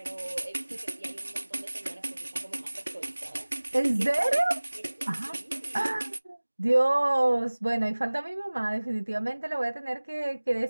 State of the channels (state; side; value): inverted; both; correlation -1.00